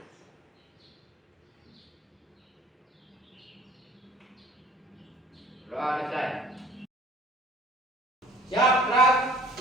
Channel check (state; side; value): normal; both; correlation 0.52